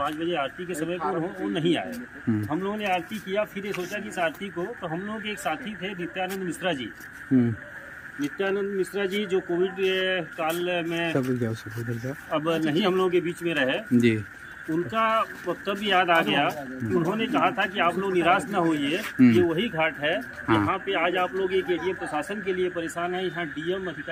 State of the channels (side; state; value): both; identical; correlation 1.00